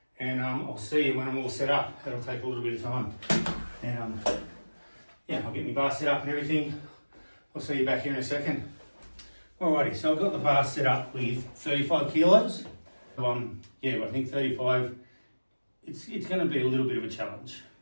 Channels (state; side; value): inverted; both; correlation -1.00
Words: and I'll see you when I'm all set up. That'll take a little bit of time. And yeah, I'll get my bar set up and everything. I'll see you back here in a second. Alrighty, so I've got the bar set up with 35 kilos. Yeah, I think 35, it's going to be a little bit of a challenge,